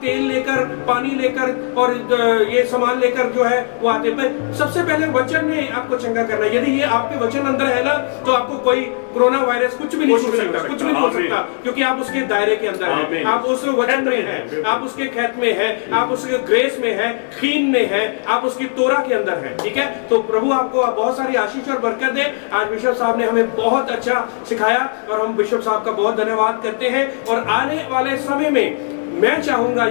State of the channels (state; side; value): silent; right; 65 dB below the other